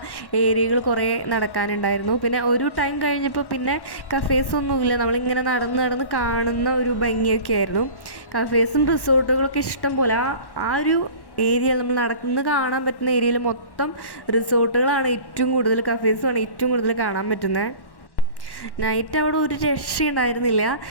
ഏരിയകൾ കുറേ നടക്കാനുണ്ടായിരുന്നു. പിന്നെ ഒരു ടൈം കഴിഞ്ഞപ്പോൾ പിന്നെ കഫേസൊന്നുമില്ല. നമ്മളിങ്ങനെ നടന്ന് കാണുന്ന ഒരു ഭംഗിയൊക്കെ ആയിരുന്നു. കഫേസും റിസോർട്ടുകളൊക്കെ ഇഷ്ടം പോലെ ആ ഒരു ഏരിയ നമ്മൾ നടന്ന് കാണാൻ പറ്റുന്ന ഏരിയയിൽ മൊത്തം റിസോർട്ടുകളാണ് ഏറ്റവും കൂടുതൽ, കഫേസുമാണ് ഏറ്റവും കൂടുതൽ കാണാൻ പറ്റുന്നത്. നൈറ്റ് അവിടെ ഒരു രക്ഷയുണ്ടായിരുന്നില്ല.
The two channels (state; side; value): late; right; 1.1 ms